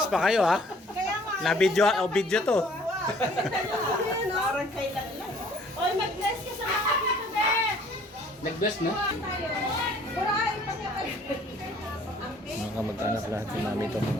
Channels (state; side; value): normal; both; correlation 0.57